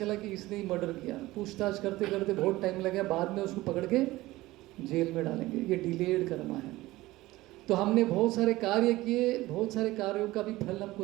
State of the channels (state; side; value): quieter; left; 18.2 dB